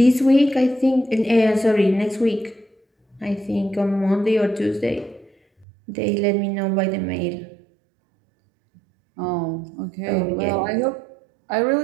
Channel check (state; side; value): drops out; left; at 5.7 s